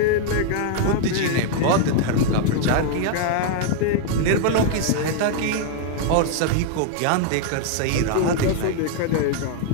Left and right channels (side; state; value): both; different; correlation 0.00